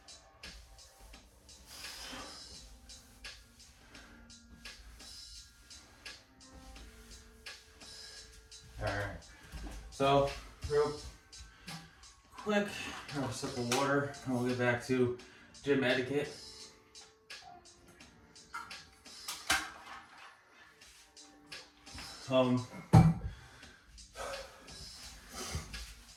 Alright, so real quick, have a sip of water and we'll get back to gym etiquette.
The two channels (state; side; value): identical; both; correlation 1.00